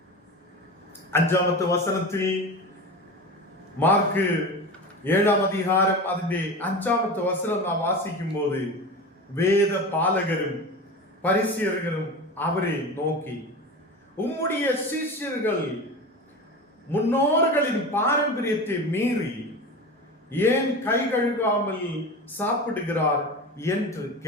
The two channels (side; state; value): both; normal; correlation 0.29